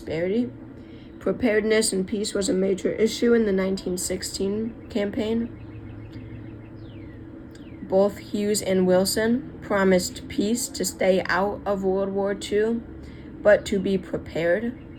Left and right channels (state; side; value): identical; both; correlation 1.00